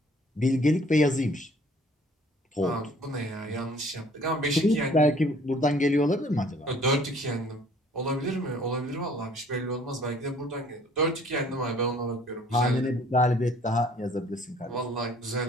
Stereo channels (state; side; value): normal; both; correlation 0.57